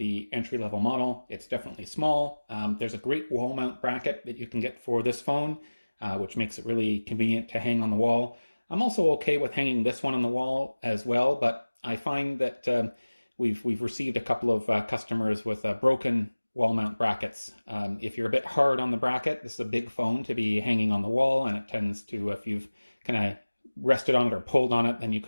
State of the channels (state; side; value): inverted; both; correlation -1.00